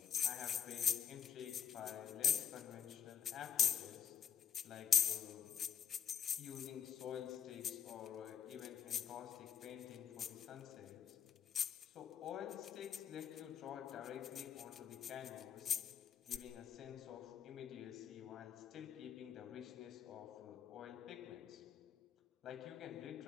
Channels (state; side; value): quieter; right; 8.5 dB